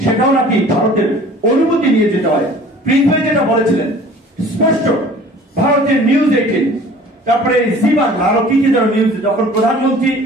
সেটাও নাকি ভারতের অনুমতি নিয়ে যেতে হয়। পৃথিবী যেটা বলেছিলেন স্পষ্ট, ভারতের নিউজ 18, তারপরে জীবন আরো কি কি যেন নিউজ, যখন প্রধানমন্ত্রী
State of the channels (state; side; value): normal; both; correlation 0.48